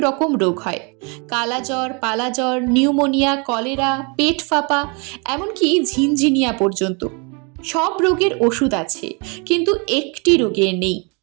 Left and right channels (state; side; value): quieter; left; 33.1 dB